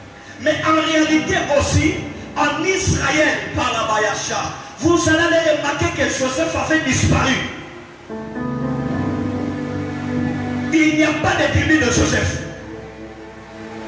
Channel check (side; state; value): both; identical; correlation 1.00